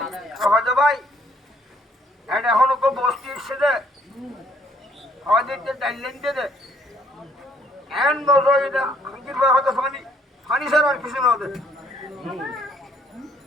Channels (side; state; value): both; normal; correlation 0.66